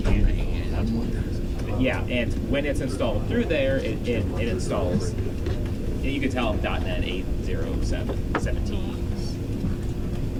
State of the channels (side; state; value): both; identical; correlation 1.00